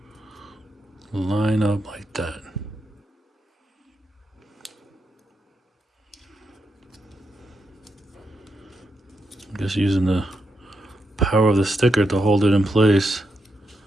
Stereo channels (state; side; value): normal; both; correlation 0.84